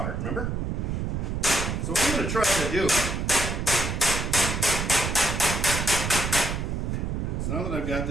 remember? So what I'm going to try to do is, now that I've got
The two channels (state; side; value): noise; right; rumble, 2 dB below the sound